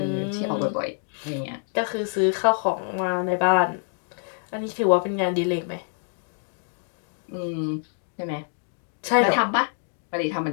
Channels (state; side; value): silent; right; digital silence